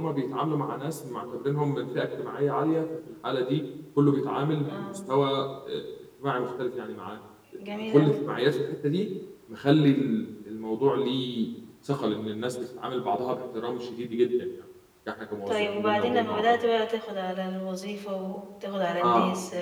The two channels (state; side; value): identical; both; correlation 1.00